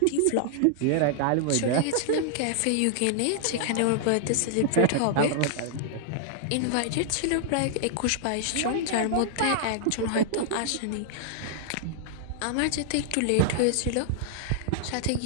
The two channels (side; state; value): both; different; correlation -0.01